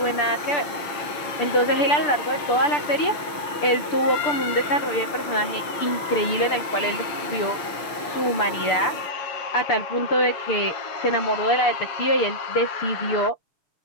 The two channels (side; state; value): right; late; 6.4 ms